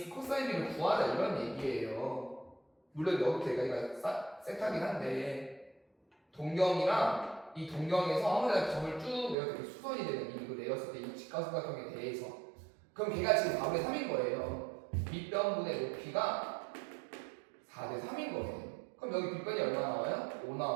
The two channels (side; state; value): left; drops out; at 9.3 s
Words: 코사인 비를 구하자 이런 얘기예요. 물론 여기부터 여기까지가 세타긴 한데 동경이랑 이 동경에서 아무데나 점을 쭉 내려서 수선이 되는 이거 내렸을 때 이 직각삼각형에 대해서 그럼 걔가 지금 4분의 3인 거예요. 밑변분의 높이가 4대 3인 거예요. 그럼 여기 빗변이 얼마 나와요? 5